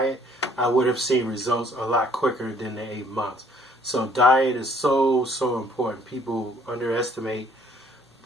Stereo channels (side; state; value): both; normal; correlation 0.61